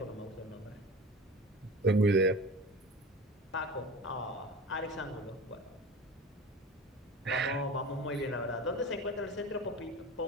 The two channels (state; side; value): normal; both; correlation 0.35